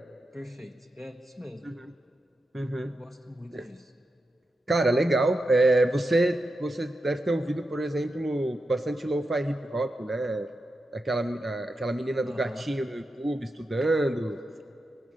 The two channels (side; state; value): both; normal; correlation 0.88